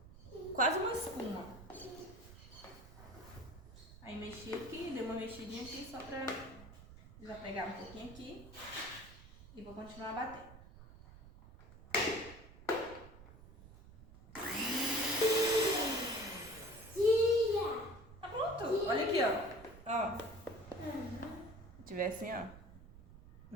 quase uma espuma. Aí mexi aqui, dei uma mexidinha aqui só pra desapegar um pouquinho aqui. E vou continuar a bater. Tá pronto. Olha aqui, ó. Ó. Se tiver assim, ó.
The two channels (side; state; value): right; noise; rumble, 18 dB below the sound